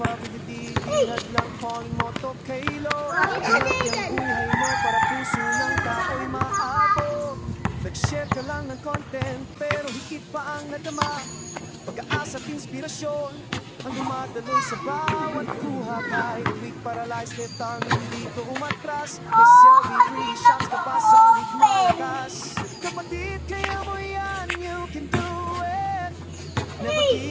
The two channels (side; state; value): both; identical; correlation 1.00